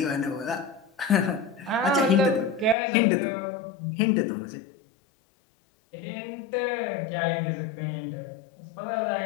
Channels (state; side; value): drops out; right; at 2.8 s